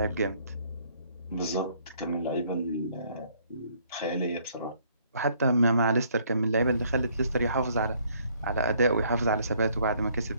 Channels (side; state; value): both; inverted; correlation -0.64